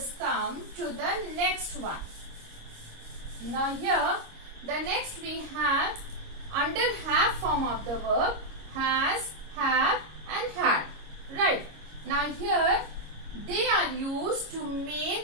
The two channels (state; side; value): late; left; 26 ms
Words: come to the next one. Now here the next we have under have form of the verb has, have and had. Right. Now here they are used to